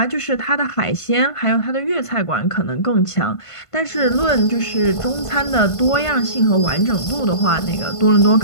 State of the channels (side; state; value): right; late; 1.5 ms